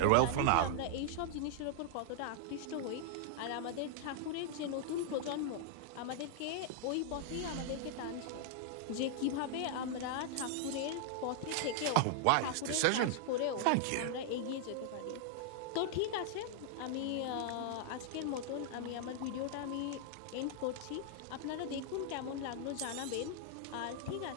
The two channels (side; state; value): both; different; correlation -0.01